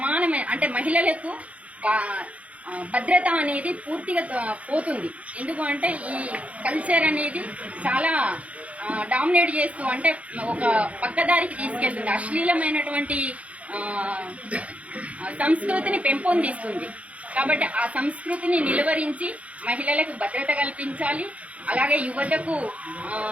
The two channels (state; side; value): late; left; 0.065 ms